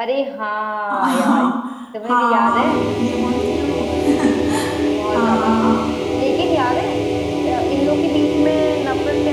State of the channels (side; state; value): both; identical; correlation 1.00